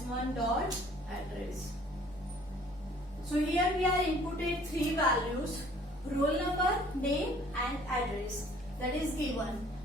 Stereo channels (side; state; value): both; normal; correlation 0.55